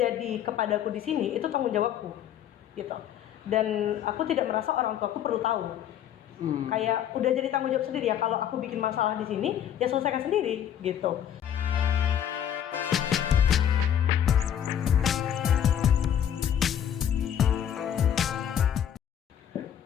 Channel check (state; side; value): quieter; right; 9.8 dB